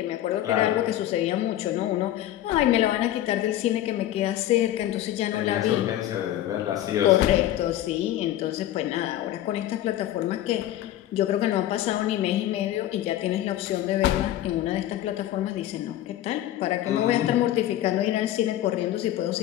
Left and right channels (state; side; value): quieter; right; 13.2 dB